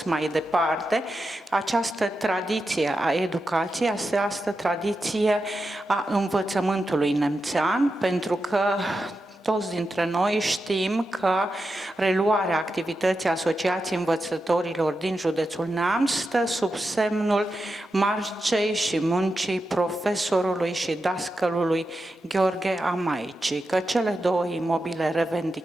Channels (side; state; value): both; normal; correlation 0.89